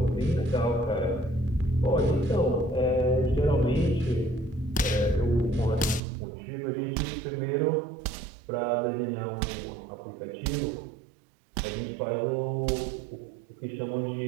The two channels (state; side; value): drops out; left; at 6.0 s